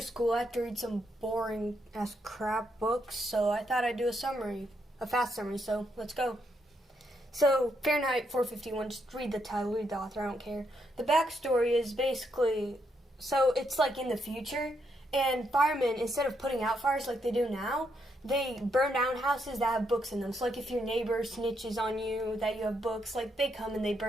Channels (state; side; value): normal; both; correlation 0.78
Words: I have to read some boring ass crap books. So I thought I'd do a fast summary. So let's go. So Fahrenheit 451. Just read the title, read the author. I don't care. The backstory is basically it's like in the future, and firemen, instead of putting out fires like they do now, they burn down houses that have books in them. So like if your neighbor snitches on you that you have books, like they come and they